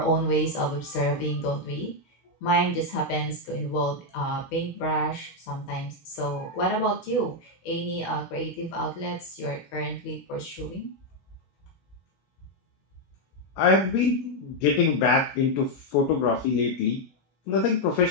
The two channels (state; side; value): late; right; 16 ms